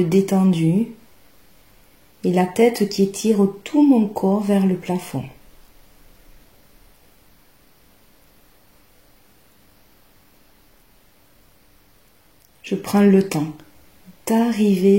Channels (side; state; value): both; identical; correlation 1.00